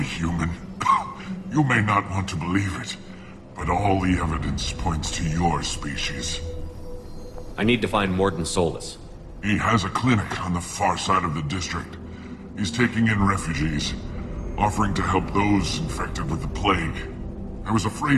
human. You may not want to believe it, but all the evidence points to your species. I need to find Mordin Solus. He has a clinic on the far side of the district. He's taking in refugees, offering to help those infected with the plague. I was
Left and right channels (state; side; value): identical; both; correlation 1.00